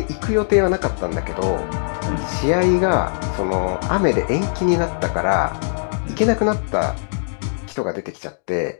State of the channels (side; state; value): right; silent; digital silence